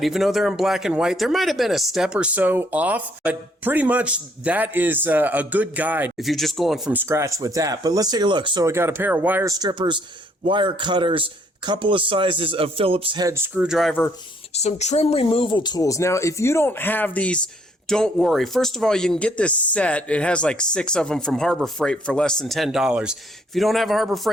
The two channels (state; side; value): normal; both; correlation 0.66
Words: Even though they're in black and white, there might have been a step or so off, but pretty much that is a good guide if you're just going from scratch with that. But let's take a look. So I got a pair of wire strippers, wire cutters, a couple of sizes of Phillips head screwdriver, some trim removal tools. Now, if you don't have these, don't worry. First of all, you can get this set. It has like 6 of them from Harbor Freight for less than $10. If you don't have a Harbor